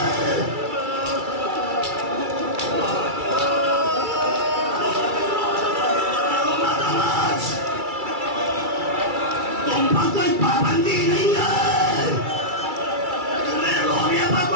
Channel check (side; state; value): left; late; 2.3 ms